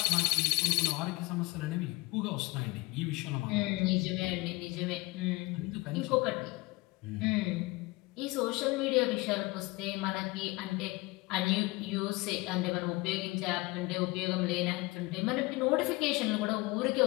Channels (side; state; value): right; quieter; 23.0 dB